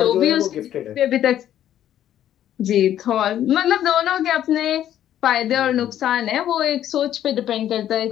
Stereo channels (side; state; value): right; quieter; 11.3 dB